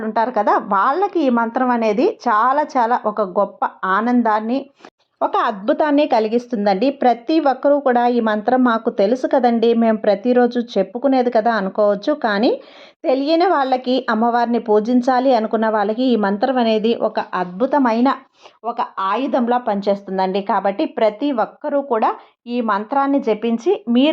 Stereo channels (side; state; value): both; identical; correlation 1.00